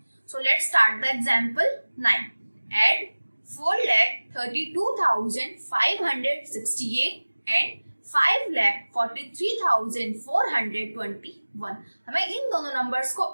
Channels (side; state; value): both; inverted; correlation -1.00